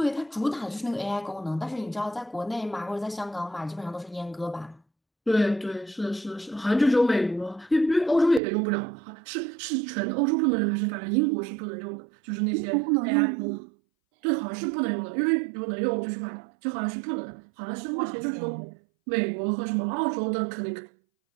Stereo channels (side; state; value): left; drops out; at 8.4 s